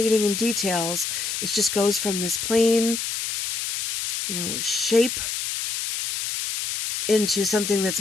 and details, it just goes from this plain, shape into something that's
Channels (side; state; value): left; noise; hiss, 3 dB below the sound